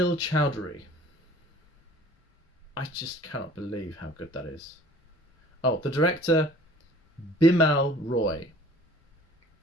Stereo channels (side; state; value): both; normal; correlation 0.50